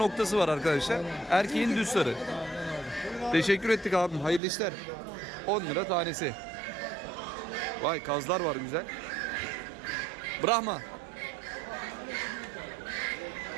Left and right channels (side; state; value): left; drops out; at 4.4 s